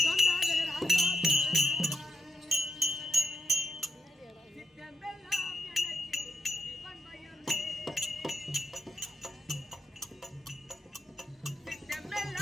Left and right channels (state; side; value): normal; both; correlation 0.84